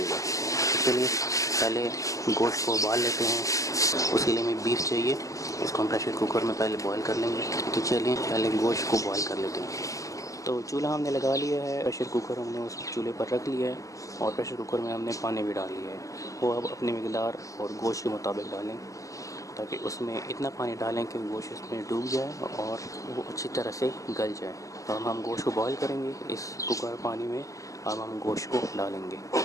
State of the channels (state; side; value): late; right; 0.16 ms